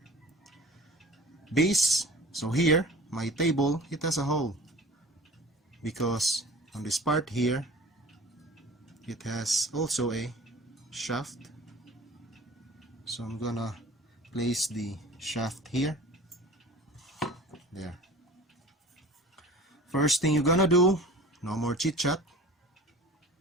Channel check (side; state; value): both; normal; correlation 0.42